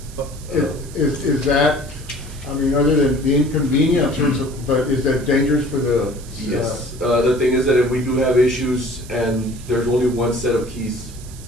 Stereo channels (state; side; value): noise; right; hiss, 19 dB below the sound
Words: Is that, I mean, other than the inconvenience, but is that dangerous for the? Yes, the thing is that if we do have issues and there's only one set of keys